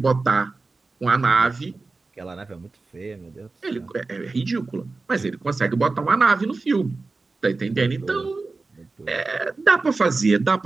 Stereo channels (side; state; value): left; quieter; 3.7 dB